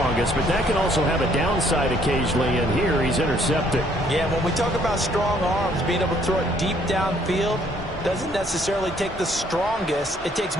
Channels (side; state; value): both; normal; correlation 0.64